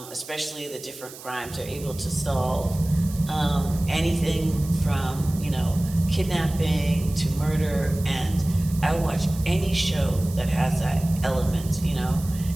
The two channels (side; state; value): right; noise; hiss, 16 dB below the sound